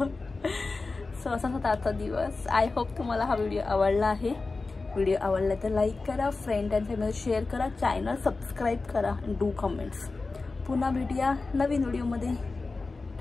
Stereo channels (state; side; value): quieter; right; 3.8 dB